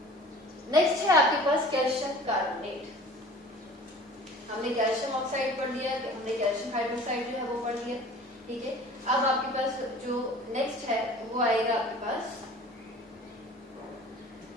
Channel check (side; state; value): both; normal; correlation 0.44